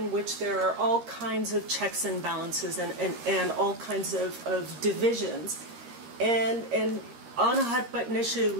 which there are all kinds of checks and balances and all kinds of divisions, and on a hot button issue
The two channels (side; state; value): left; late; 13 ms